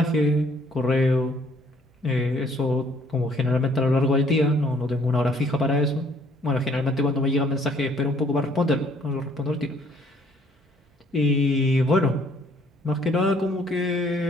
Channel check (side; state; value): both; normal; correlation 0.62